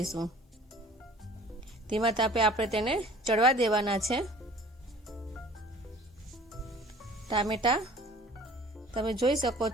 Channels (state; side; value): normal; both; correlation 0.48